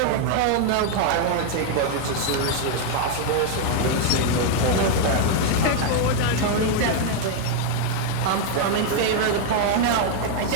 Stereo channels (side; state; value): both; different; correlation 0.00